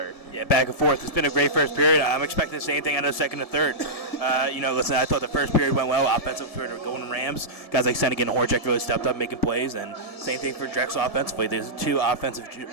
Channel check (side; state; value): right; late; 1.7 ms